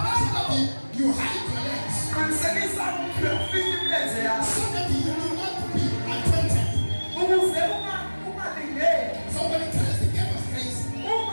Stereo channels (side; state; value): both; inverted; correlation -1.00